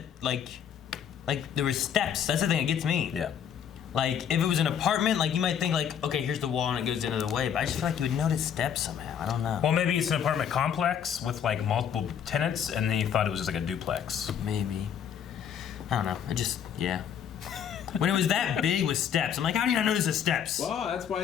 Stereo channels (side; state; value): right; quieter; 8.5 dB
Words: like there was steps. That's the thing that gets me. Yeah. Like if it was an apartment, like you might think like, okay, here's the wall and it goes into the way, but I just feel like you would notice steps somehow. I don't know. Well, maybe it's an apartment complex with like multiple tenants, and then you thought it was just like a duplex. Maybe. I don't know. Yeah. When it was that big with steps, I'm like, how do you not notice the steps? Well, that's